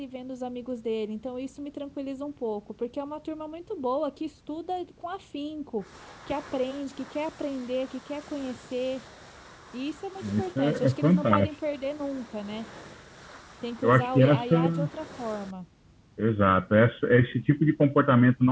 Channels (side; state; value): both; identical; correlation 1.00